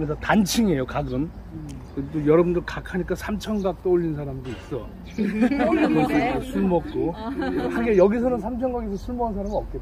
단층이에요. 각은. 또 여러분들 각 하니까 삼천각 떠올린 사람도 있어. 술 먹고. 하긴 여기서는 삼천각에서 술 먹은 사람은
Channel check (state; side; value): identical; both; correlation 1.00